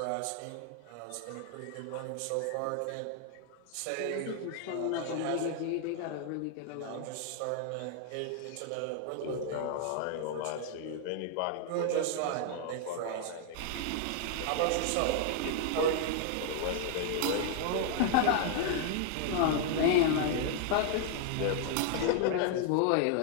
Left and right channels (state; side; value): different; both; correlation 0.00